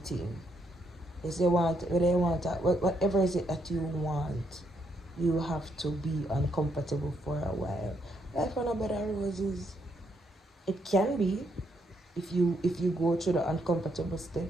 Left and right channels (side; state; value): both; normal; correlation 0.75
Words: thing. If you want, whatever is it that you want, you have to be uncomfortable for a while. Life on a bed of roses. It can be if you go through the uncomfortable